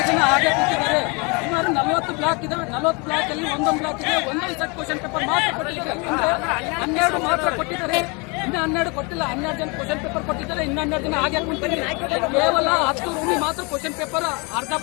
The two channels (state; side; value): quieter; right; 30.2 dB